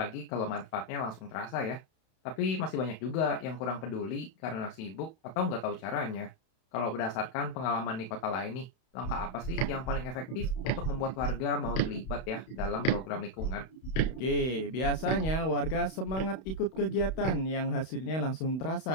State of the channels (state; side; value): late; right; 31 ms